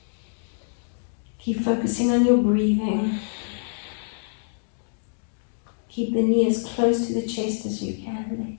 Keep focusing on your breathing. Keep the knee as close to the chest as you can.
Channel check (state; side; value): silent; right; digital silence